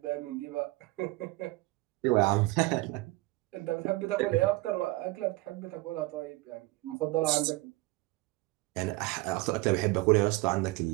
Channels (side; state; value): left; quieter; 21.1 dB